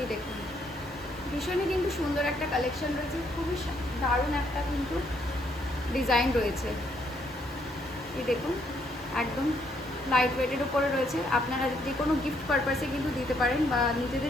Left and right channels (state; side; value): normal; both; correlation 0.71